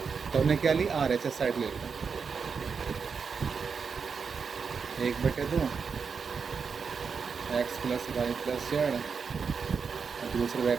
तो हमने क्या ली? RHS साइड ले लिया। 1/2 x plus Y plus z, दूसरे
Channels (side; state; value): left; quieter; 5.7 dB